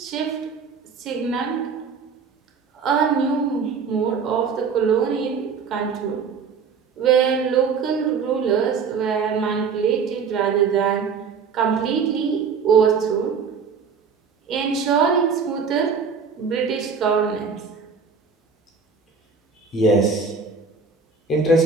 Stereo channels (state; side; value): quieter; left; 5.6 dB